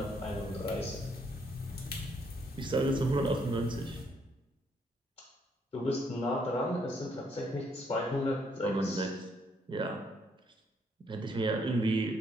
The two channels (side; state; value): both; normal; correlation 0.71